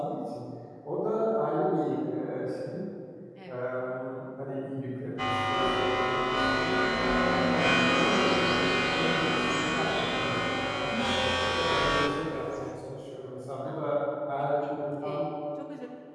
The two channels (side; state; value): both; identical; correlation 1.00